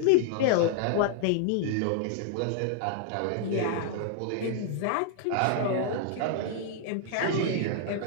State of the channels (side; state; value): both; different; correlation 0.00